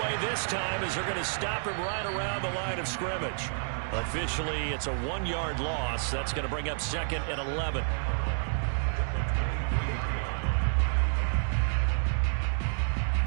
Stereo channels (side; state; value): left; silent; 58 dB below the other